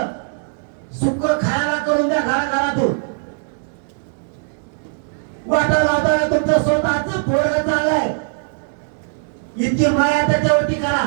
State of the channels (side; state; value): left; silent; digital silence